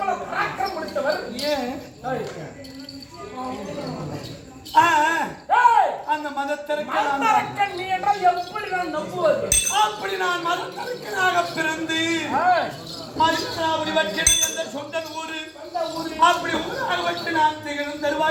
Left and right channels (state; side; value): identical; both; correlation 1.00